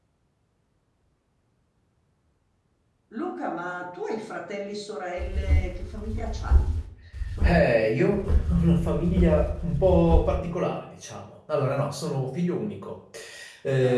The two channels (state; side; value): identical; both; correlation 1.00